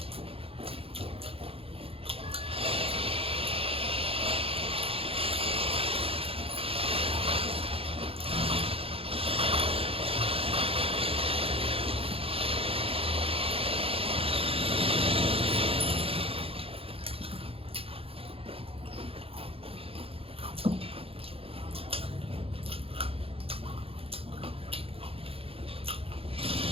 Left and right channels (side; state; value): left; late; 0.27 ms